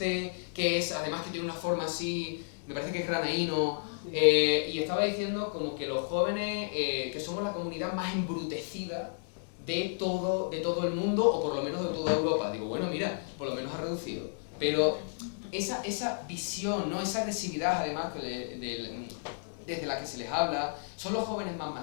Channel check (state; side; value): silent; right; digital silence